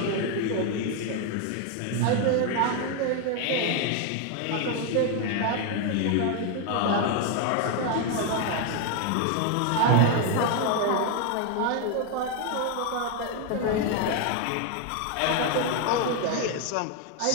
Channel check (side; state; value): both; different; correlation 0.01